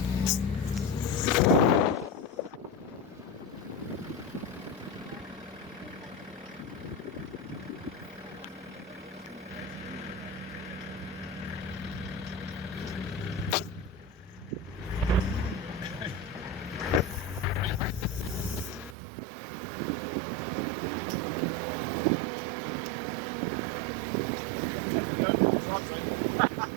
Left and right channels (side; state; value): left; drops out; at 18.9 s